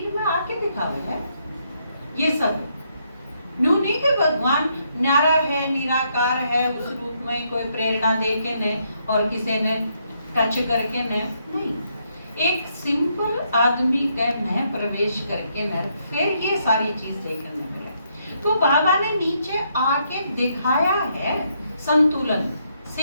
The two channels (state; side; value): inverted; both; correlation -0.75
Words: में आके दिखावे है। ये सब न्यू नहीं कि भगवान न्यारा है, निराकार है, उस रूप में कोई प्रेरणा दे के ने और किसी ने टच करके ने नहीं, एक सिंपल आदमी के में प्रवेश करके न फिर ये सारी चीज देखने मिले। तो बाबा ने नीचे आके दिखाया है संतुलन,